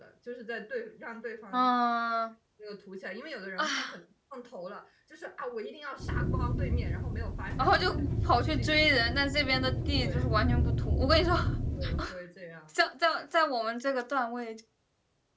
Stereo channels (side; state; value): both; identical; correlation 1.00